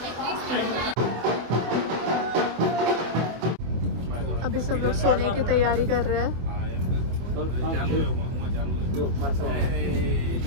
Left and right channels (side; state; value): left; late; 24 ms